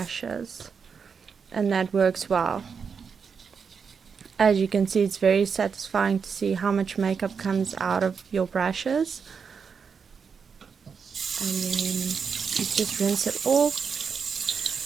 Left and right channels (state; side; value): quieter; left; 6.1 dB